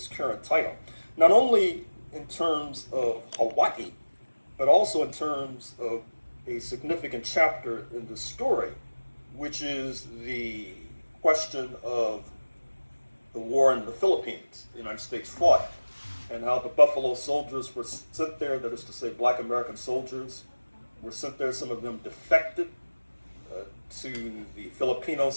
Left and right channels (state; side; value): inverted; both; correlation -1.00